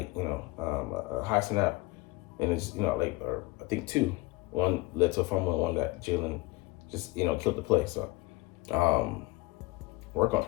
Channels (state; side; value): quieter; right; 21.9 dB